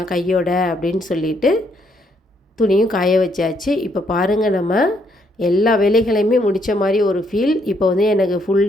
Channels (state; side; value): normal; both; correlation 0.72